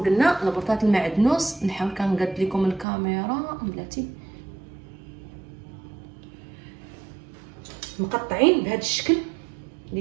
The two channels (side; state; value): left; drops out; at 2.9 s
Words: قلنا ربطه المعدنوس. نحاول كنقاد لكم الكاميرا بلاتي. مقطعين بهذا الشكل